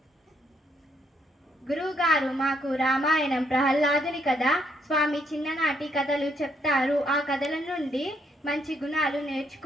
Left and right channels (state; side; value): normal; both; correlation 0.72